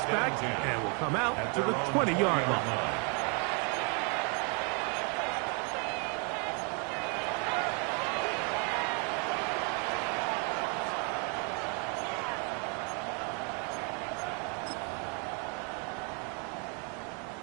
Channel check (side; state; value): left; quieter; 34.7 dB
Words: and will come out to the 20-yard line.